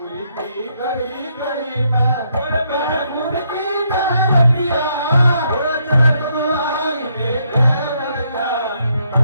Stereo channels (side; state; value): both; inverted; correlation -0.74